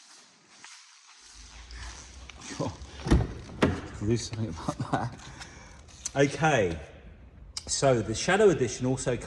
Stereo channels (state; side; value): identical; both; correlation 1.00